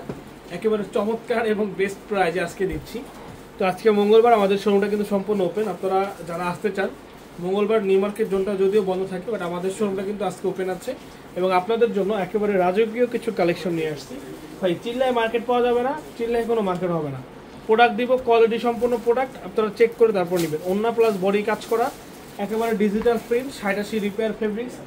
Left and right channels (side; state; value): both; identical; correlation 1.00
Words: একেবারে চমৎকার এবং বেস্ট প্রাইজে আজকে দিচ্ছি। তো আজকে মঙ্গলবার আমাদের শোরুমটা কিন্তু সম্পূর্ণ ওপেন। আপনারা যারা আসতে চান, মঙ্গলবার নিউ মার্কেট জোনটা যদিও বন্ধ থাকে, বাট আমাদের শোরুমটা কিন্তু আজকে ওপেন আছে এবং আপনাদের জন্য একেবারে রাজকীয় কিছু কালেকশন নিয়ে আসছি। ভাই চিল্লায় মার্কেট পাওয়া যাবে না, চিল্লায় কোনো মার্কেট হবে না। প্রোডাক্ট দিব কোয়ালিটি সম্পূর্ণ প্রোডাক্ট, আপনারা চেক করে তারপর নেবেন। ওন্না প্লাস বডি কাজ করা, একেবারে ডিজিটাল প্রিন্ট, 87 রিপেয়ার ফেব্রিক্স